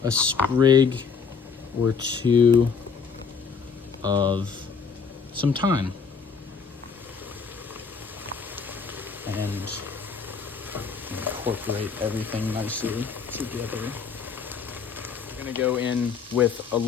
a sprig or 2 of some thyme. And incorporate everything nicely together. We're gonna go in with a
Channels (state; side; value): quieter; right; 5.7 dB